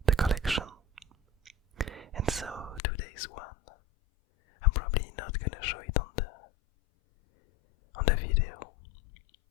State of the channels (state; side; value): drops out; right; at 2.8 s